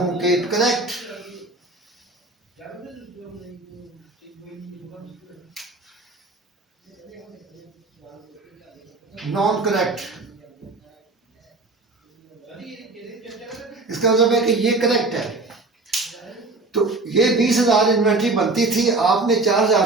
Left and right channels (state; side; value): quieter; left; 3.3 dB